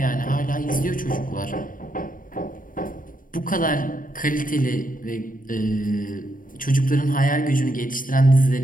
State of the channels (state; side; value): late; right; 0.40 ms